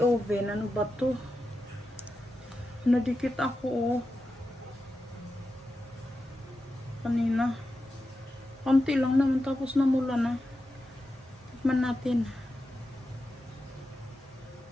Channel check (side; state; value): both; normal; correlation 0.90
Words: oven. Ano ba to? Nadikit ako kanina. Konti lang naman tapos namula na. Tikman natin.